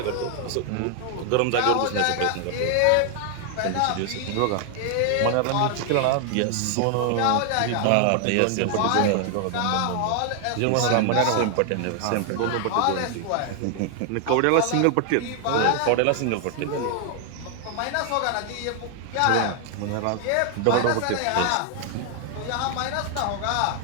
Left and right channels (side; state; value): both; different; correlation 0.00